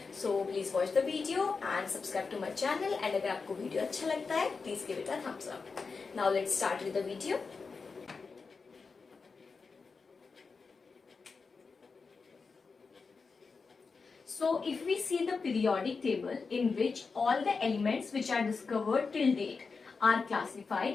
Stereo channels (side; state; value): right; quieter; 4.7 dB